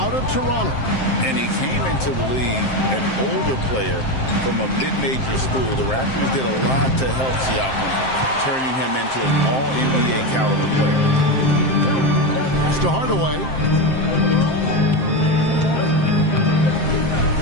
of Toronto. And he came into the league an older player from a mid-major school. The Raptors did a lot to help Siakam, turning him into an all-NBA caliber player. Pass to Hardaway.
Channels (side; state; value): right; late; 7.6 ms